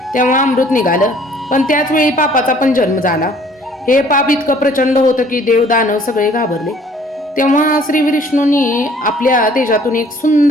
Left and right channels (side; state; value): both; normal; correlation 0.56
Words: तेव्हा अमृत निघालं, पण त्याच वेळी पापाचा पण जन्म झाला. हे पाप इतकं प्रचंड होतं की देव दानव सगळे घाबरले. तेव्हा श्री विष्णूंनी आपल्या तेजातून एक